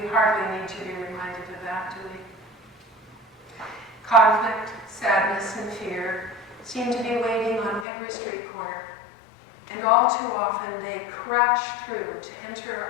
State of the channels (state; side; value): drops out; right; at 7.9 s